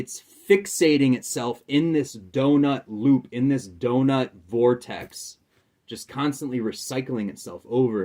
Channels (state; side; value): identical; both; correlation 1.00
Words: fixating itself in this donut loop, in this donut vortex, just constantly recycling itself over